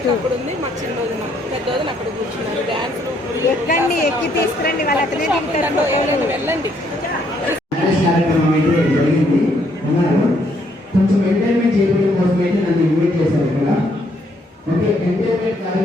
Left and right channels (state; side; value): normal; both; correlation 0.70